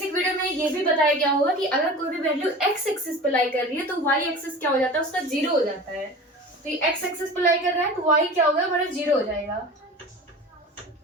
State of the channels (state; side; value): normal; both; correlation 0.36